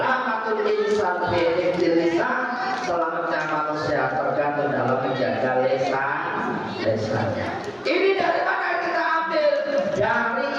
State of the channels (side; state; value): both; identical; correlation 1.00